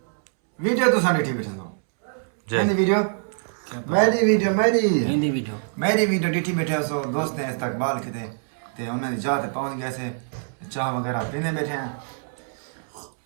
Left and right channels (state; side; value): silent; left; 62 dB below the other